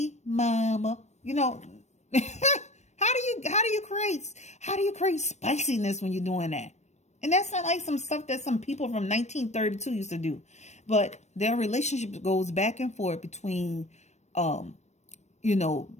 mama. You know, how do you create spiciness when you're doing that? And that's not like some stuff that some people from 1932 used to do. But their relationship goes back and forth between,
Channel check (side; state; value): right; late; 0.33 ms